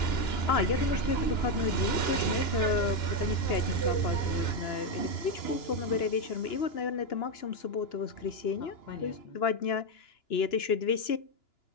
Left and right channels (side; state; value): right; late; 2.9 ms